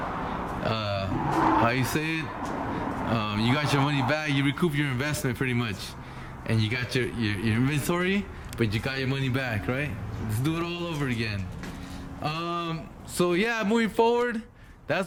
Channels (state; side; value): identical; both; correlation 1.00